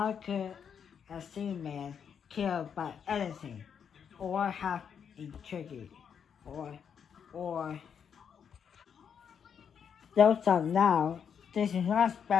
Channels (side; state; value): right; quieter; 7.5 dB